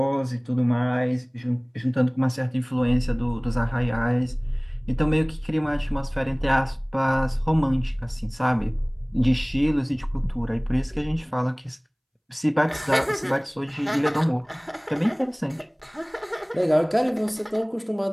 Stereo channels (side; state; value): both; identical; correlation 1.00